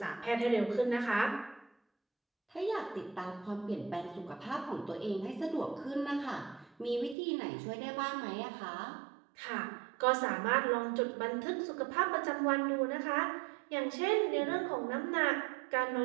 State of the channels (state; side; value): drops out; left; at 7.2 s